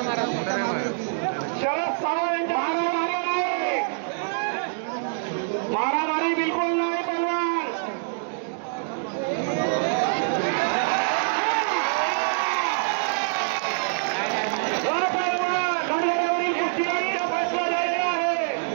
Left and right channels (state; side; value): silent; left; digital silence